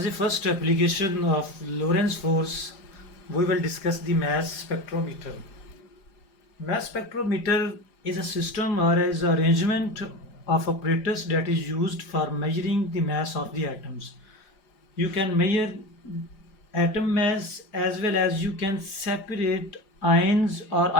the first application of Lorentz force, we will discuss the mass spectrometer. Mass spectrometer is a system or is an arrangement of apparatus that is used for measuring the mass of the atoms. You can measure atom mass as well as you can separate ions or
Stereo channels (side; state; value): right; late; 4.9 ms